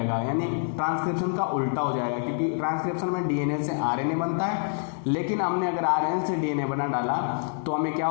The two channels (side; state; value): right; silent; 61 dB below the other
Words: यानी ट्रांसक्रिप्शन का उल्टा हो जाएगा। क्योंकि ट्रांसक्रिप्शन में डीएनए से आरएनए बनता है, लेकिन हमने अगर आरएनए से डीएनए बना डाला तो हमें क्या